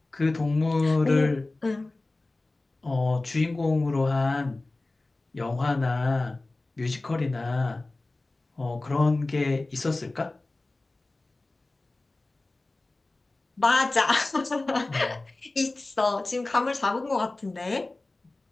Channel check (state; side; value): quieter; right; 3.0 dB